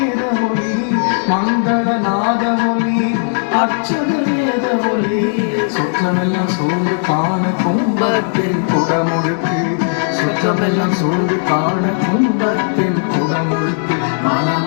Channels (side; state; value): right; silent; digital silence